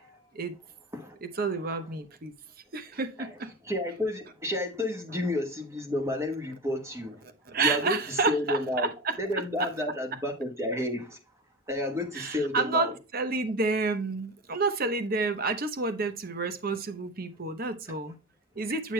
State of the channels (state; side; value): normal; both; correlation 0.26